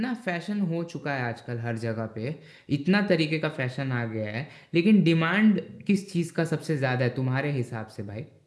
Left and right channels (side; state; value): both; identical; correlation 1.00